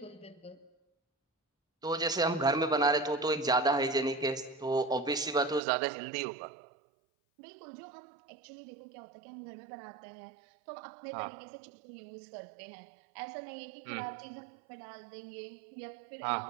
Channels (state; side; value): drops out; left; at 5.6 s